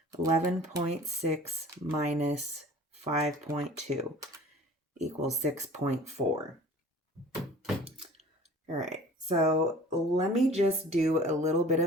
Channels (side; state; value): both; normal; correlation 0.45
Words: 11.6 minus 5.2 equals 6.4. All right, so let me just do a little bit